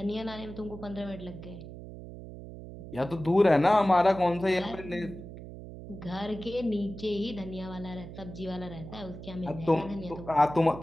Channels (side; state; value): right; noise; hum, 13 dB below the sound